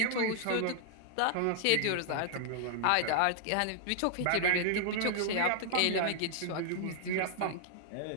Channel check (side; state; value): both; different; correlation -0.01